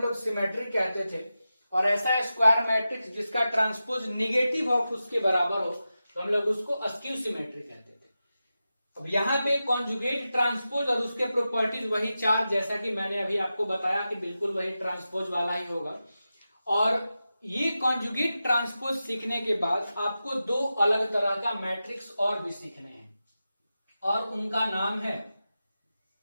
सिमेट्रिक कहते थे, और ऐसा स्क्वायर मैट्रिक्स जिसका ट्रांसपोज निगेटिव ऑफ उसके बराबर हो तो हम लोग उसको अस्क्यू सिमेट्रिक कहते थे। अब यहाँ पे कॉन्जुगेट ट्रांसपोज और उसके प्रॉपर्टीज वही 4, जैसा कि मैंने अभी आपको बताया कि बिल्कुल वही ट्रांसपोज वाला ही होगा। और ये कॉन्जुगेट ट्रांसपोज सीखने के बाद आपको 2 अलग तरह का मैट्रिक्स और भी सीखने हैं, और उनका नाम है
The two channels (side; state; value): both; inverted; correlation -0.92